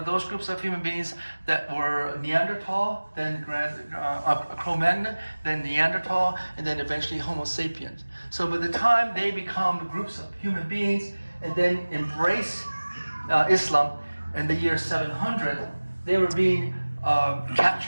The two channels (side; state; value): both; inverted; correlation -1.00